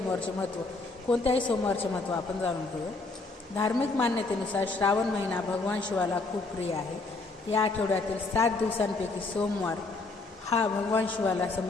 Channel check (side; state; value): right; quieter; 3.5 dB